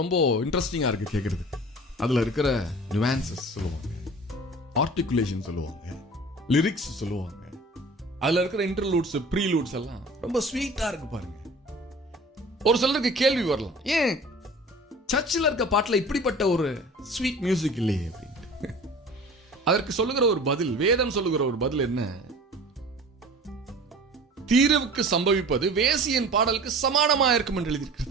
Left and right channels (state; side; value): normal; both; correlation 0.42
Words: இன்ட்ரெஸ்டிங்கா இருக்கு கேட்கறது. அதுல இருக்கிற நியூவான்சஸ் சொல்லுவாங்க, ஆர்டிகுலேஷன் சொல்லுவாங்க, லிரிக்ஸ் சொல்லுவாங்க, அதுல இருக்கிற இன்டர்லூட்ஸ் ப்ரீலூட்ஸ் எல்லாம் ரொம்ப ஸ்வீட்டா இருக்கு பாருங்க. ஒரு சிலருக்கு கேள்வி வரலாம், ஏன் சர்ச்சில் இருக்க பாட்டுல இப்படிப்பட்ட ஒரு ஸ்வீட் மியூசிக் இல்லையே அப்படின்ட்டு. அதற்கு சொல்லுகிற ஒரு பதில், வேதம் சொல்லுகிற ஒரு பதில் என்ன? தீர்வுக்கு சம்பவிப்பது வேசியின் பாடலுக்கு சமானமா இருக்கும் என்று